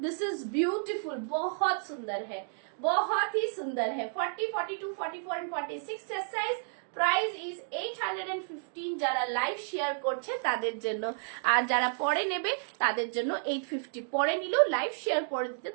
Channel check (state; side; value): silent; left; digital silence